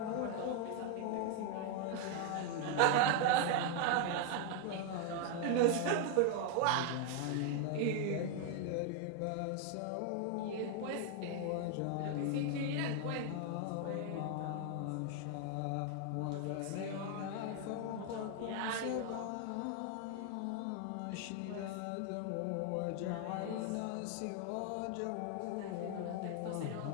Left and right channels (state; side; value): different; both; correlation 0.00